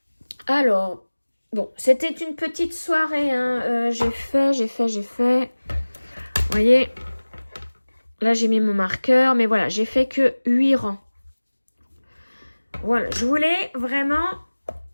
Alors, bon, c'était une petite soirée, hein. J'ai fait. Vous voyez, là, j'ai mis mon marqueur, mais voilà, j'ai fait que 8 rangs. Voilà, je voulais vraiment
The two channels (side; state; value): both; inverted; correlation -1.00